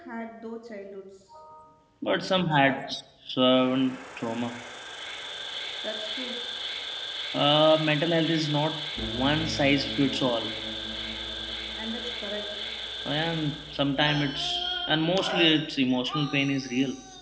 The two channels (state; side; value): identical; both; correlation 1.00